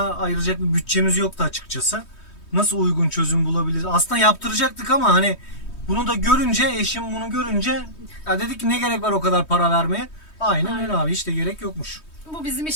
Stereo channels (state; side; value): late; right; 3.2 ms